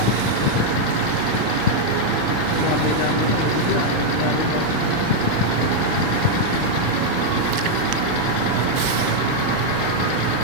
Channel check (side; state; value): both; different; correlation 0.00